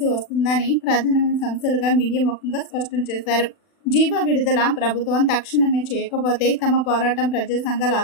వస్తుందని ప్రధానమైన సమస్యలుగా మీడియా ముఖంగా స్పష్టం చేశారు. జీవో విడుదల ప్రభుత్వం తక్షణమే చేయకపోతే తమ పోరాటం ప్రజా సంఘాల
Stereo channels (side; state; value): right; late; 40 ms